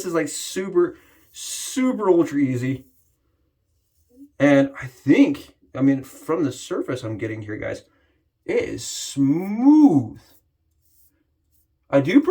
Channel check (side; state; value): both; identical; correlation 1.00